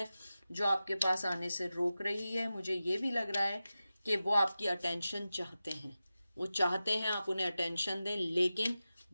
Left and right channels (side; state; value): both; inverted; correlation -0.94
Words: जो आपके पास आने से रोक रही है। मुझे ये भी लग रहा है कि वो आपकी अटेंशन चाहते हैं, वो चाहते हैं आप उन्हें अटेंशन दें, लेकिन